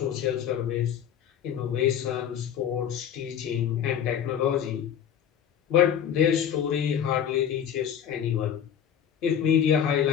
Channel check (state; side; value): quieter; right; 9.1 dB